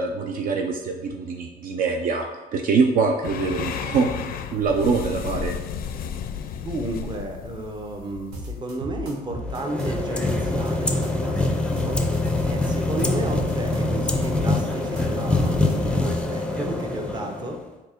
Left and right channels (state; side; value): normal; both; correlation 0.61